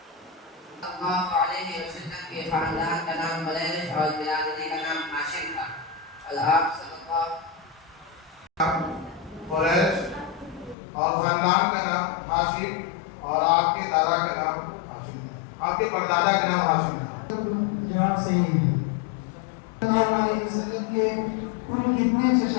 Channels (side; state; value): right; drops out; at 10.8 s